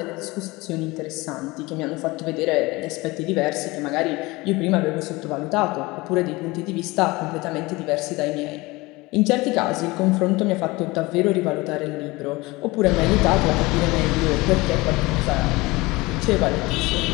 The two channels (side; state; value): right; quieter; 22.3 dB